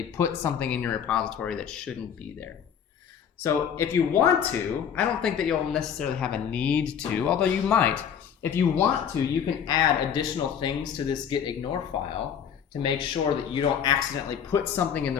put something in your repository that shouldn't be there. So if you want to, I don't think that you'll necessarily have a need to, although you might. If you want to, you can add additional things to this git ignore file to make sure that you don't accidentally put something in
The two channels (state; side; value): quieter; right; 8.1 dB